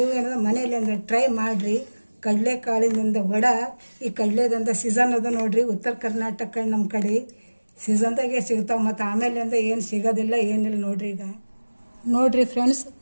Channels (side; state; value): both; inverted; correlation -1.00